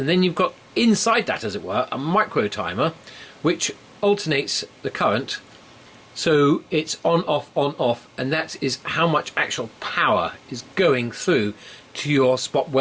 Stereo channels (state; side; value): identical; both; correlation 1.00